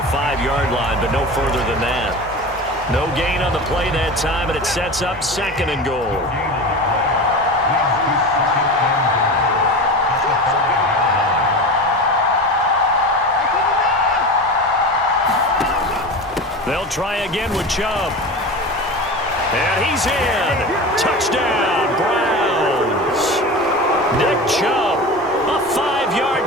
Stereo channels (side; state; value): both; normal; correlation 0.29